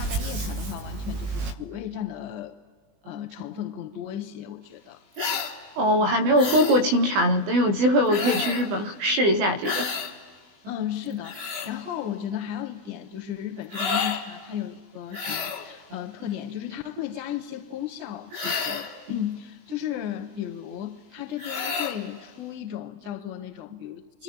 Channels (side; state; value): left; late; 20 ms